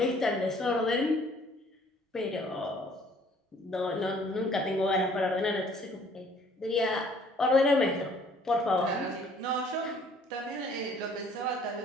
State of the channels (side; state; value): both; normal; correlation 0.58